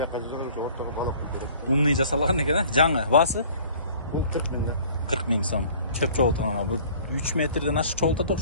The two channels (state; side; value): inverted; both; correlation -0.50